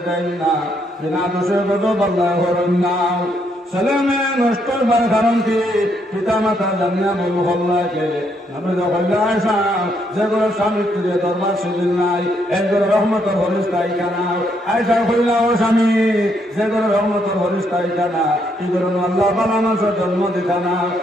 দেয় না, বিনা দোষে গজব আল্লাহ হলেন না। ছেলে মেয়ে নষ্ট হবার কারণ কি? পিতা মাতা জানিয়া বই হল্লাই কে? নবী হইল আয়সা যে ঘরে স্বামী স্ত্রী দরবার সেদিন নাই এই ঘরে রহমতর হরিস্তাই জানা। আয়সা হইল ও স্বামী যে ঘরে রহমতর হরিস্তাই জানা কি করে আল্লাহ বালা মানুষের জন্ম দিতা না।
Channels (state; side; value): normal; both; correlation 0.74